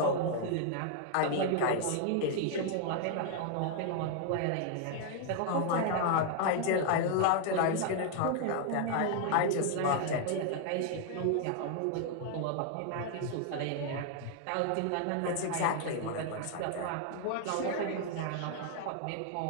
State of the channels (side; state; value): both; different; correlation 0.00